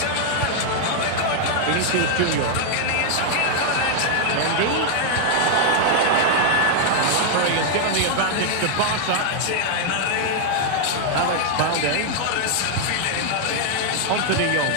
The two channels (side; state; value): both; different; correlation 0.00